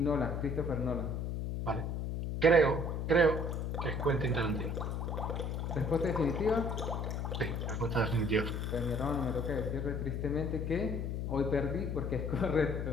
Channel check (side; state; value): left; noise; hum, 2 dB below the sound